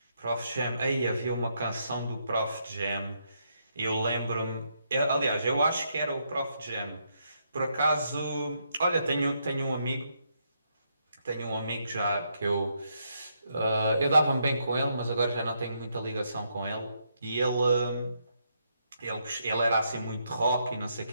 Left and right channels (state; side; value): inverted; both; correlation -0.77